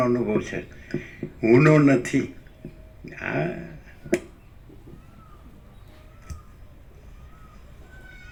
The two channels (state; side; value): identical; both; correlation 1.00